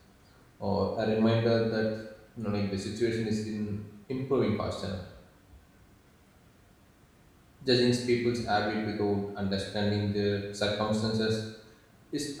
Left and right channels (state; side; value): identical; both; correlation 1.00